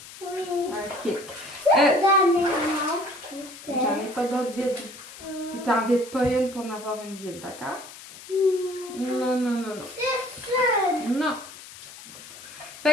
Oui. Ok. Dernièrement. J'en ai pas d'autres vides. Puis t'en vides pas une pour en avoir une vide, d'accord? Non, non, non, non. C'est ça. Non.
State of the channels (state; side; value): noise; left; hiss, 16 dB below the sound